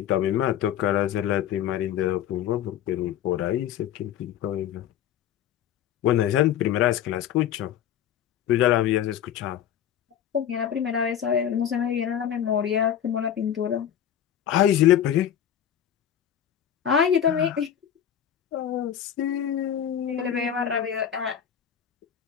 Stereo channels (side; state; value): right; quieter; 9.8 dB